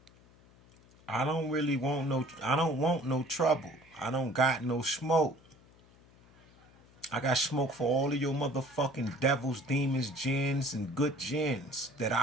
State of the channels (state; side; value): noise; left; hum, 27 dB below the sound